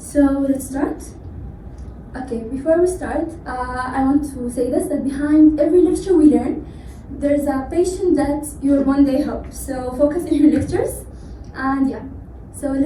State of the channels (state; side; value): identical; both; correlation 1.00